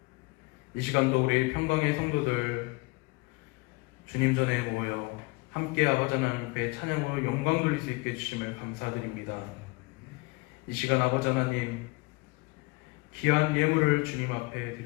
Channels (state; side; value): quieter; right; 25.5 dB